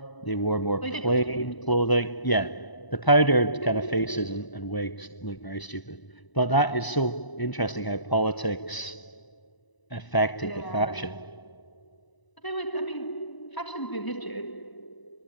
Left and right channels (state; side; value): late; right; 1.0 ms